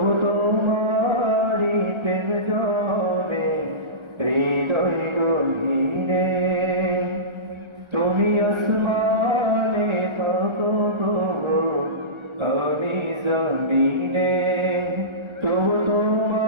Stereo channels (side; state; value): left; late; 1.3 ms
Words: তোমারি প্রেম জমে হৃদয় গহীনে। তুমি আসমানে থাকো প্রভু, কাউনি জমিনে, তবু